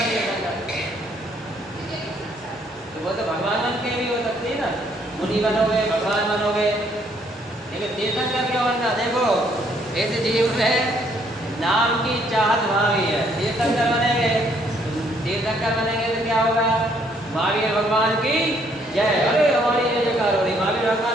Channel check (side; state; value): both; normal; correlation 0.67